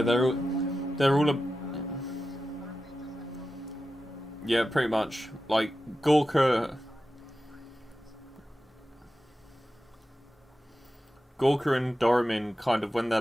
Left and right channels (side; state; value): both; normal; correlation 0.92